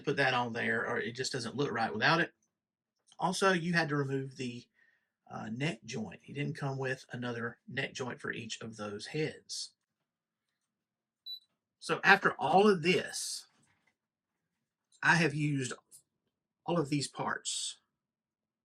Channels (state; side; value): identical; both; correlation 1.00